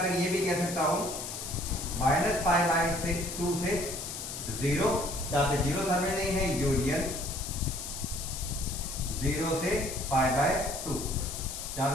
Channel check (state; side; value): noise; left; hiss, 7 dB below the sound